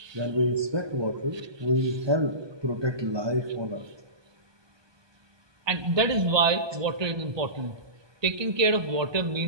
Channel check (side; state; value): left; late; 1.2 ms